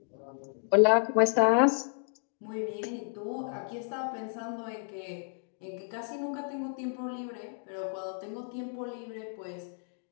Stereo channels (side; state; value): right; silent; 57 dB below the other